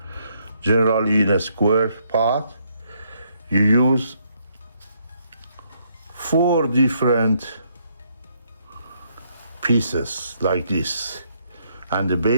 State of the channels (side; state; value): both; inverted; correlation -0.72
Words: Generally in a square pot, you use 4 different pieces like this. And the